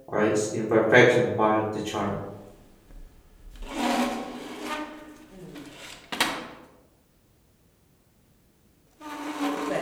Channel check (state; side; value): identical; both; correlation 1.00